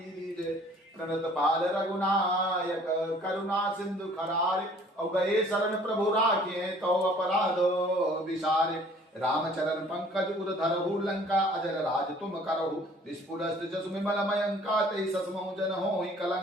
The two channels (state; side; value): normal; both; correlation 0.54